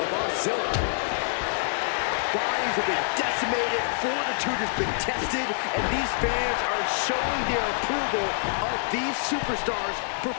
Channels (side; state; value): right; silent; digital silence